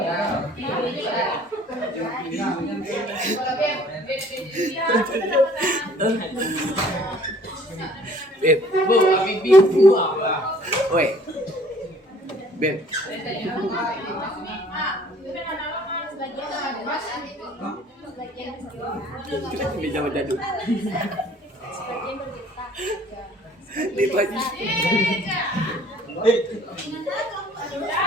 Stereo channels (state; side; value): normal; both; correlation 0.55